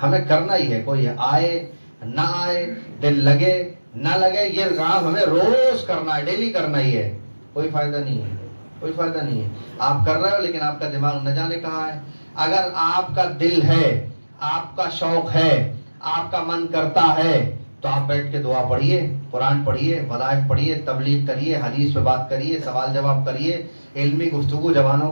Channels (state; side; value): inverted; both; correlation -1.00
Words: ہمیں کرنا ہی ہے، کوئی آئے نہ آئے، دل لگے نہ لگے، یہ کام ہمیں روز کرنا ہے، ڈیلی کرنا ہی ہے، کوئی فائدہ نہیں ہے۔ آپ کر رہے ہو لیکن آپ کا دماغ نہ جانے کہاں ہے۔ اگر آپ کا دل ہے، آپ کا شوق ہے، آپ کا من کرتا ہے تو آپ بیٹھ کے دعا پڑھیے، قرآن پڑھیے، وظائف پڑھیے، تبلیغ کریے، حدیث پہ بات کریے، سوال جواب کریے، علمی گفتگو جوانوں